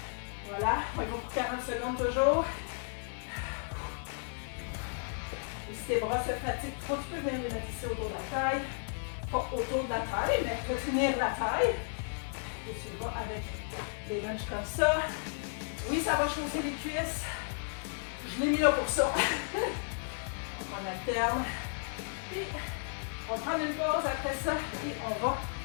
Voilà, on va pour 40 secondes toujours. Et si tes bras se fatiguent trop, tu peux venir les mettre ici autour de la taille. Pas autour de la taille, mais retenir la taille. Et tu vas avec des lunges comme ça. Oui, ça va chauffer les cuisses. Je l'ai mis là pour ça. Donc on alterne. Puis, on va prendre une pause après ça. Et on va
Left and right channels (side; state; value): right; silent; 55 dB below the other